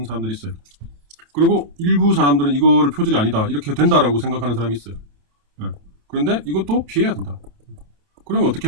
사람들이 있어요. 그리고 일부 사람들은 이거를 표절이 아니다. 이렇게 된다라고 생각하는 사람이 있어요. 네. 그런데 이것도 피해야 된다. 그러면 어떻게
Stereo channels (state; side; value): late; left; 28 ms